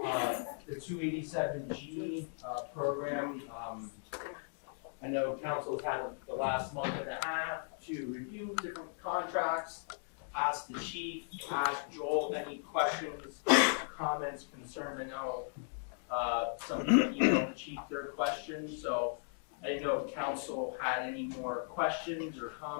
The 287G program. I know council's had the last month and a half to review different contracts, ask the chief, ask Joel any questions, comments, concerns. I know some people emailed the chief their questions, so I didn't know if council had any more questions or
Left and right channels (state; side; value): silent; right; digital silence